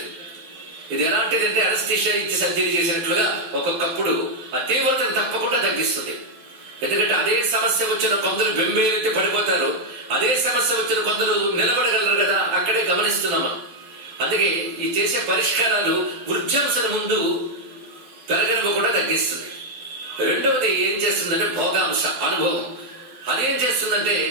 ఇది ఎలాంటిదంటే అనస్థీషియా ఇచ్చి సర్జరీ చేసినట్లుగా ఒక్కొక్కప్పుడు ఆ తీవ్రతను తప్పకుండా తగ్గిస్తుంది. ఎందుకంటే అదే సమస్య వచ్చిన కొందరు బెంబేలెత్తి పడిపోతారు, అదే సమస్య వచ్చిన కొందరు నిలబడగలరు కదా, అక్కడే గమనిస్తున్నామా. అందుకే ఈ చేసే పరిష్కారాలు వృద్ధ్యంశను ముందు పెరగనివ్వకుండా తగ్గిస్తుంది. రెండవది ఏం చేస్తుందంటే భోగాంశ అనుభవం. అదేం చేస్తుందంటే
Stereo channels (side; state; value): left; late; 12 ms